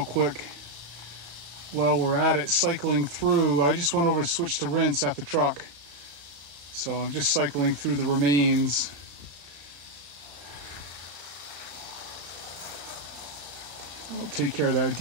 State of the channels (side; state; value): left; late; 34 ms